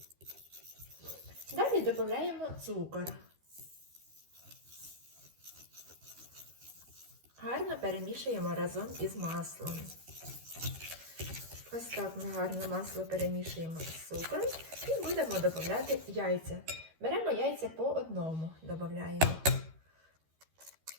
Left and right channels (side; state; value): left; late; 13 ms